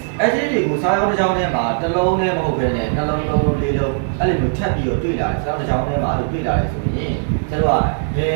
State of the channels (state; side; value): silent; left; digital silence